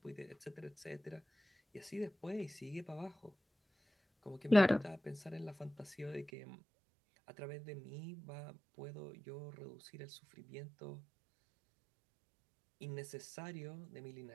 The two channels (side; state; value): left; drops out; at 6.3 s